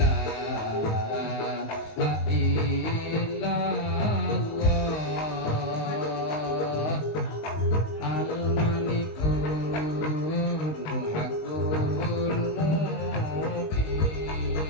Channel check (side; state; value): right; late; 19 ms